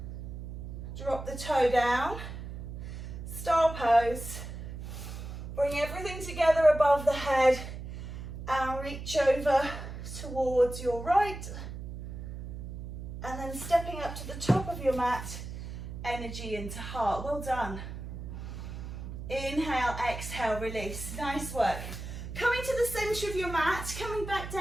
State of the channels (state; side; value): noise; right; hum, 9 dB below the sound